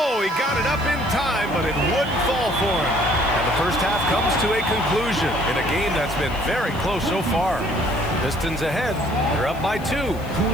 he got it up in time, but it wouldn't fall for him. And the first half comes to a conclusion in a game that's been very close so far. Pistons ahead. They're up by 2.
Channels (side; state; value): left; noise; hiss, 22 dB below the sound